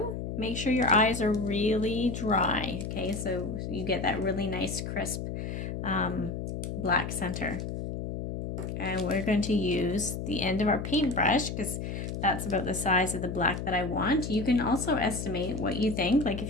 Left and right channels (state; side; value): noise; left; hum, 5 dB below the sound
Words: make sure your eyes are really dry, okay, so you get that really nice crisp black center. And we're going to use the end of our paintbrush because that's about the size of the black that I want. You can also estimate what you think. Like